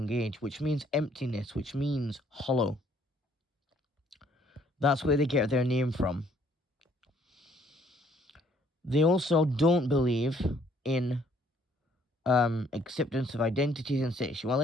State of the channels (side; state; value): both; normal; correlation 0.63